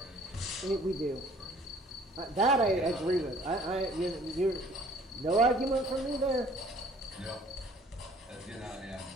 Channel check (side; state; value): both; normal; correlation 0.55